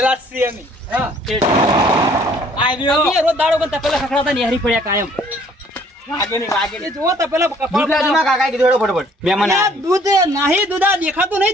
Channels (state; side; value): normal; both; correlation 0.59